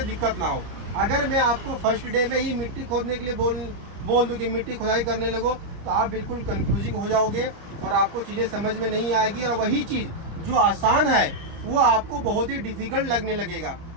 दिक्कत ना हो। अगर मैं आपको फर्स्ट डे में ही मिट्टी खोदने के लिए बोल दूँ कि मिट्टी खुदाई करने लगो तो आप बिल्कुल कंफ्यूजिंग हो जाओगे और आपको चीज़ें समझ में नहीं आएगी, और वही चीज़ जो आसान है वो आपको बहुत ही डिफ़िकल्ट लगने लगेगा,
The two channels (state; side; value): late; left; 30 ms